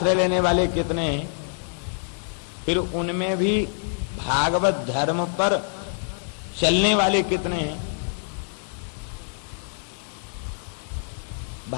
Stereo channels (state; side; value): silent; right; 60 dB below the other